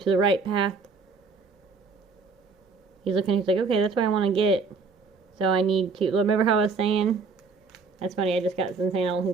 the right path. He's looking, he's like, okay, that's what I want to get. So I need to, remember how I was saying? That's funny, I just got some saying, I don't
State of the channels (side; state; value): left; quieter; 4.6 dB